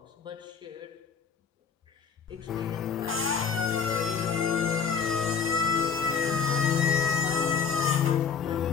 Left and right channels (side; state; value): right; quieter; 6.4 dB